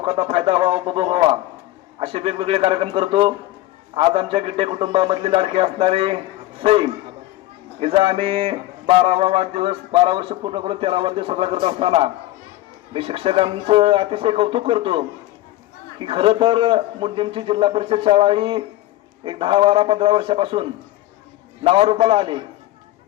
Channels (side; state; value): right; quieter; 16.0 dB